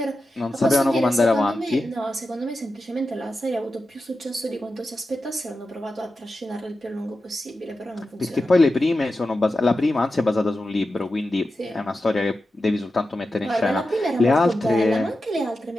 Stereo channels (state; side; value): normal; both; correlation 0.91